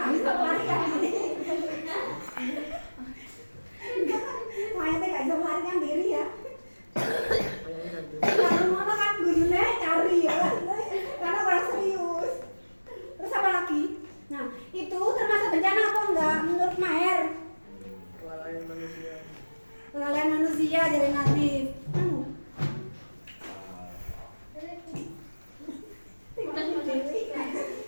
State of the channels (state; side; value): inverted; both; correlation -1.00